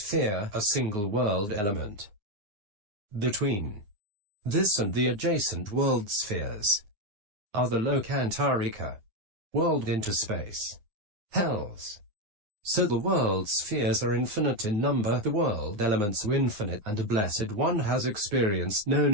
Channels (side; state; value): left; late; 9.6 ms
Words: a single world element. Between this and the adjacent world spheres are the lokantarika, world interspace, hells. So the world spheres are infinite in number, the world elements are infinite, and a blessed one has experienced,